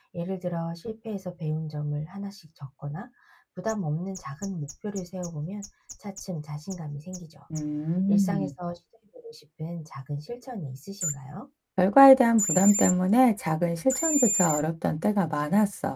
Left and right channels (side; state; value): both; identical; correlation 1.00